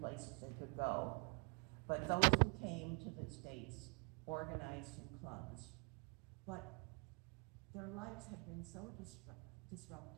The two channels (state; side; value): quieter; left; 36.2 dB